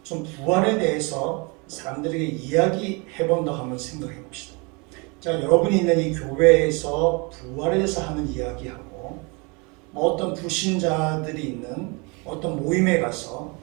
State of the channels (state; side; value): quieter; left; 30.0 dB